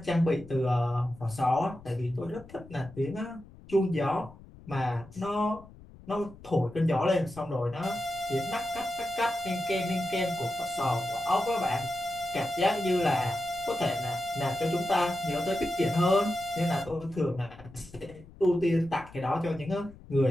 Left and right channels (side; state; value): left; noise; rumble, 20 dB below the sound